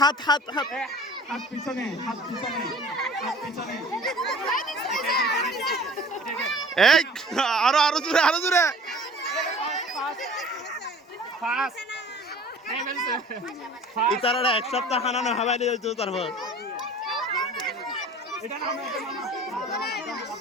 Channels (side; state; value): both; normal; correlation 0.45